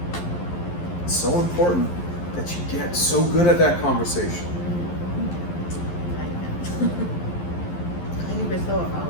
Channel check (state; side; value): late; right; 11 ms